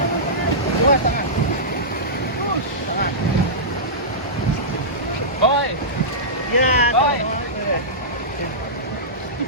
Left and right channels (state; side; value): normal; both; correlation -0.16